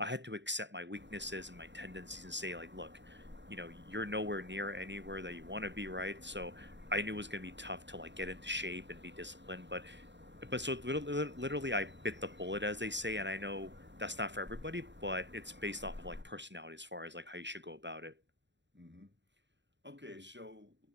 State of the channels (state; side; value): late; left; 0.52 ms